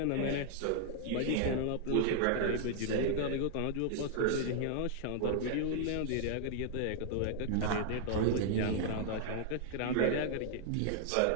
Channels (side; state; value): both; different; correlation -0.01